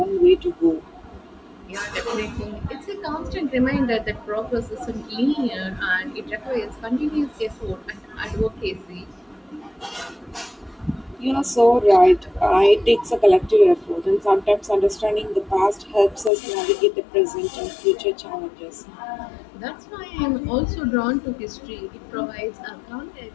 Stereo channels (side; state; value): right; drops out; at 16.3 s